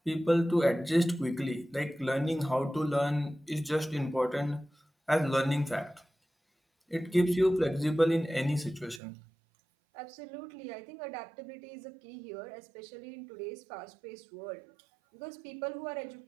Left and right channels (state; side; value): drops out; left; at 9.0 s